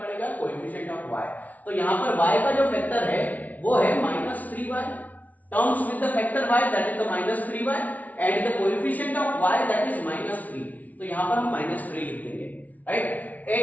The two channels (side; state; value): right; late; 0.073 ms